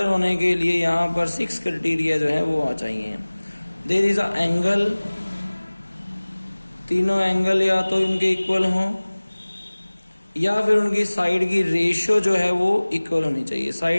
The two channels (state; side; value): inverted; both; correlation -1.00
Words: होने के लिए यहाँ पर 6 क्राइटेरिया जो है वो आ चाहिए. देयर इज अ एंगल, तीनों एंगल या तो इनके इक्वल हों या फिर उनकी साइड की रेशो जो है वो इक्वल होनी चाहिए.